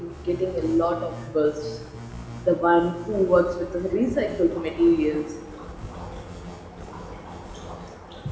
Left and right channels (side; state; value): both; identical; correlation 1.00